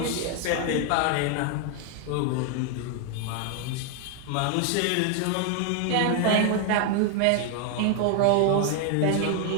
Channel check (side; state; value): both; different; correlation 0.00